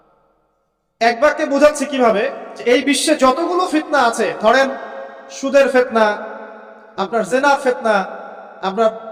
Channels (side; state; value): both; identical; correlation 1.00